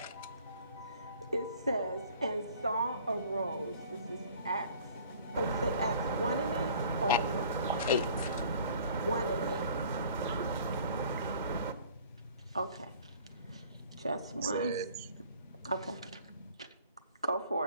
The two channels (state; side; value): inverted; both; correlation -0.51